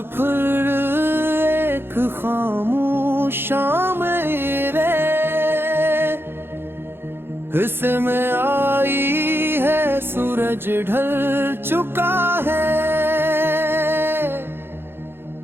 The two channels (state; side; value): late; left; 0.11 ms